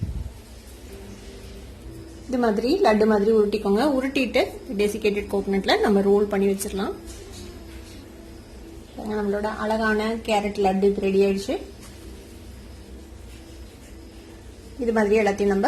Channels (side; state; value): both; identical; correlation 1.00